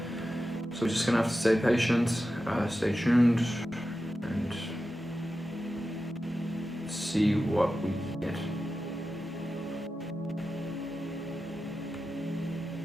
So we're just going to have to stay patient, stay tuned, and see what we get.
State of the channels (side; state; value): both; normal; correlation 0.92